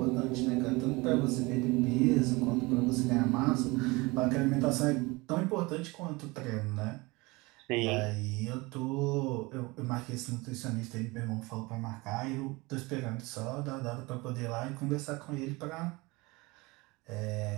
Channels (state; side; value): quieter; left; 23.9 dB